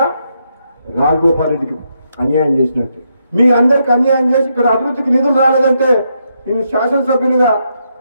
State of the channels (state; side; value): inverted; both; correlation -0.79